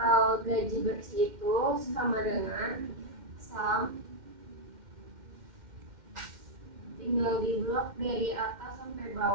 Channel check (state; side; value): late; left; 2.1 ms